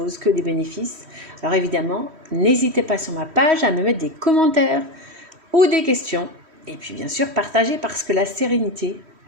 que des bénéfices. Alors évidemment, n'hésitez pas sur ma page à me mettre des commentaires ou des questions. Et puis bien sûr, partagez parce que la sérénité,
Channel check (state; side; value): late; left; 3.1 ms